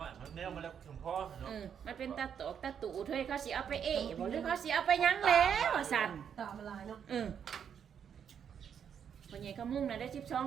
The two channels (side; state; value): left; quieter; 8.0 dB